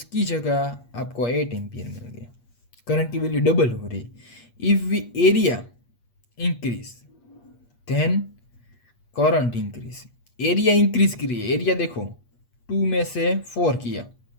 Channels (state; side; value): late; right; 8.4 ms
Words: जगह आपको 8 एम्पियर मिल गया। करंट की वैल्यू डबल हो रही। If we area increase then current increase. Area increase की रही है। एरिया देखो, 2 में से 4 किया,